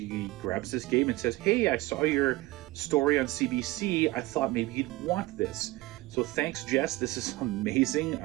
grabs this game and says, hey, I saw your story on CBC. I thought maybe you'd want this. So thanks, Jess. This is amazing.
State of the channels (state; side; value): quieter; left; 19.6 dB